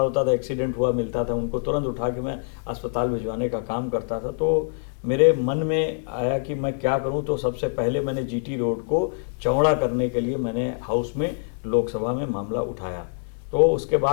था, एक्सीडेंट हुआ मिलता था, उनको तुरंत उठा के मैं अस्पताल भिजवाने का काम करता था। तो मेरे मन में आया कि मैं क्या करूं, तो सबसे पहले मैंने जीटी रोड को चौड़ा करने के लिए मैंने हाउस में लोकसभा में मामला उठाया। तो उसके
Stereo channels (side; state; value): right; silent; digital silence